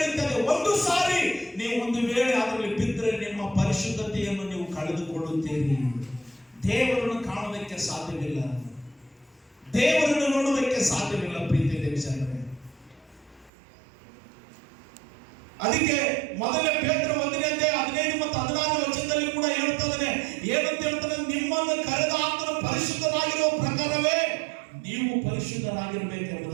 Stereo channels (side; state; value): left; drops out; at 13.5 s